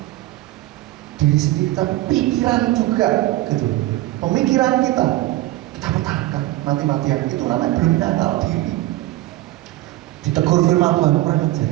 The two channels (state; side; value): quieter; left; 16.9 dB